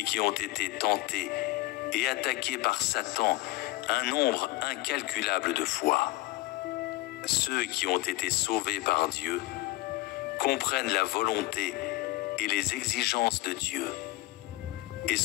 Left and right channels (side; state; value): right; quieter; 19.0 dB